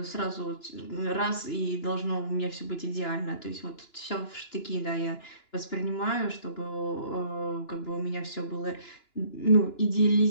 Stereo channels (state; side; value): late; right; 2.9 ms